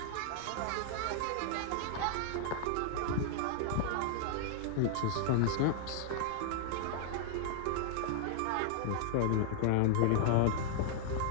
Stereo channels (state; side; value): different; both; correlation -0.01